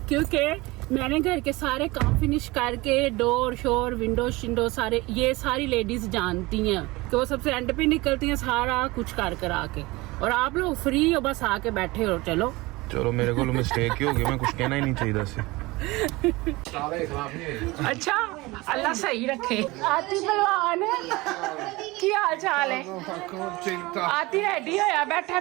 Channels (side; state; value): left; quieter; 21.9 dB